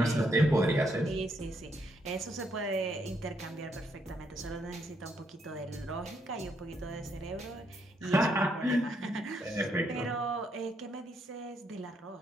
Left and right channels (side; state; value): both; normal; correlation 0.75